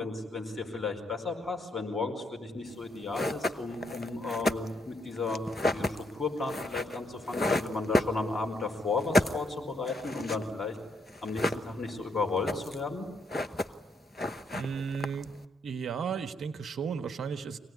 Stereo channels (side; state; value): both; normal; correlation 0.75